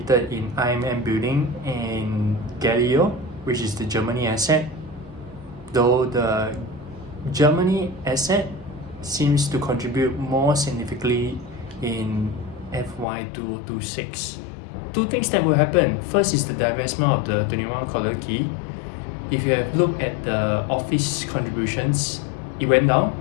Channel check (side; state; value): right; drops out; at 13.1 s